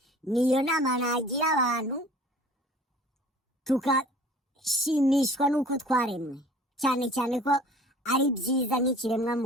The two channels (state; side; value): normal; both; correlation 0.48